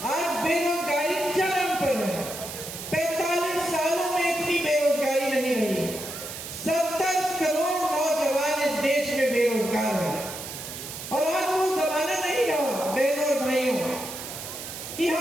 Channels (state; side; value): noise; right; hiss, 9 dB below the sound